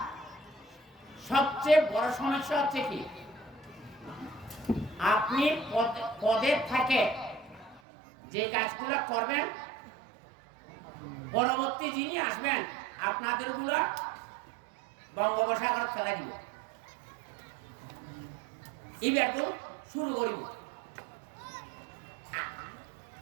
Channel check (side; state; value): left; drops out; at 7.8 s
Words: সবচেয়ে বড় সমস্যা হচ্ছে কি, আপনি পদে থাকে যে কাজগুলো করবেন, পরবর্তী যিনি আসবেন আপনাদের গুলা বঙ্গোপসাগর ফেলা দিব, এবার তো শুরু করিব।